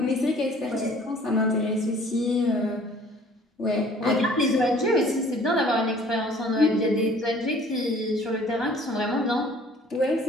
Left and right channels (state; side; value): normal; both; correlation 0.53